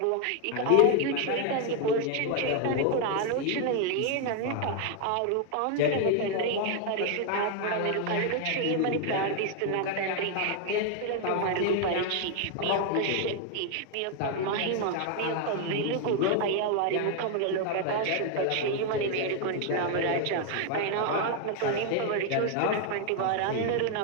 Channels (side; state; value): both; different; correlation 0.00